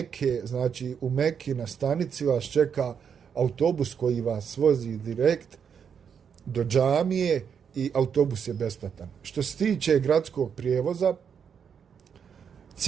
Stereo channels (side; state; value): left; quieter; 7.2 dB